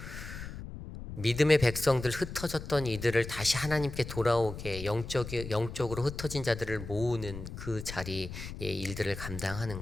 믿음의 백성들, 흩어졌던 이들을 다시 하나님께 돌아오게 영적으로 흩어진 자들을 모으는 그 자리의 일들을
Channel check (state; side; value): noise; left; rumble, 10 dB below the sound